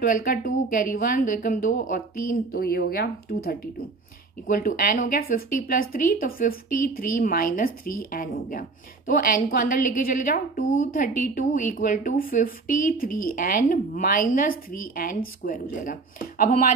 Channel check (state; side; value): quieter; left; 4.0 dB